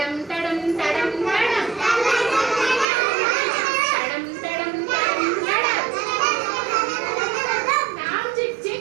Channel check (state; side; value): drops out; left; at 2.9 s